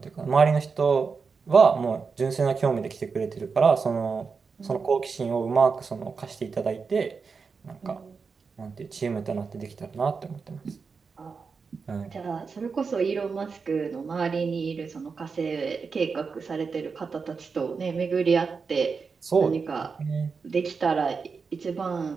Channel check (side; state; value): left; quieter; 5.1 dB